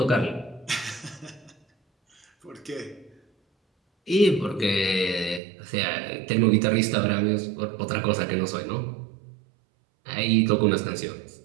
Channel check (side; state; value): left; drops out; at 5.4 s